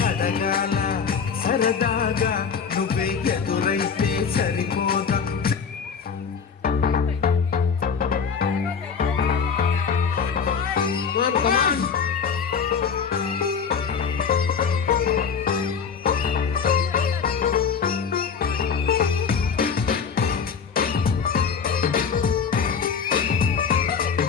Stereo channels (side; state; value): right; quieter; 6.3 dB